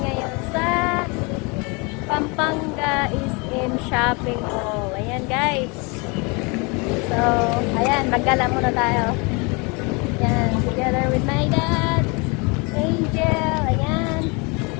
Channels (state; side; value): quieter; right; 29.7 dB